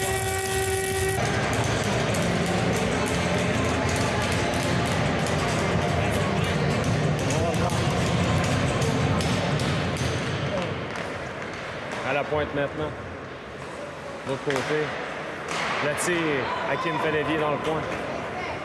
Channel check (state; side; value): identical; both; correlation 1.00